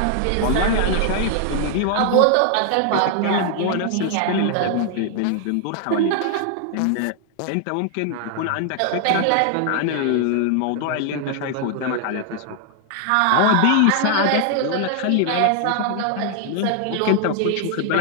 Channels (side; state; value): both; different; correlation 0.00